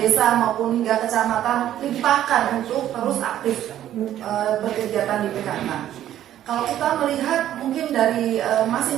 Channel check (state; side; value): quieter; left; 11.9 dB